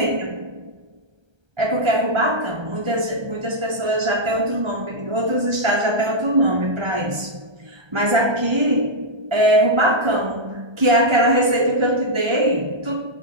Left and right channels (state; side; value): late; left; 1.3 ms